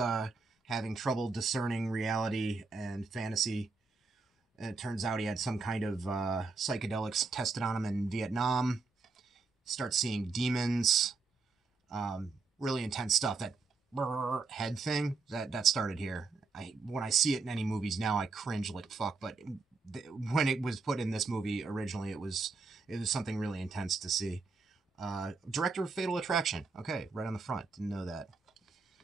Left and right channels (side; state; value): left; quieter; 4.2 dB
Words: having trouble discerning reality and fantasy. And it turns out he had some kind of psychedelics tested on him in Vietnam. Starts seeing demons. Really intense stuff. That head thing, that started here. When I see it in any movies now, I cringe like fuck. But when it was put in this movie originally, it was something really intense to see. Director of Fatal Attraction. Okay, right on the front. Didn't know that.